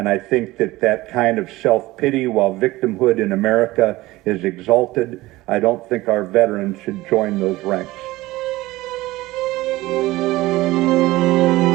I think that that kind of self-pity, while victimhood in America is exalted, I don't think our veterans should join those ranks.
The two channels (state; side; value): quieter; left; 18.4 dB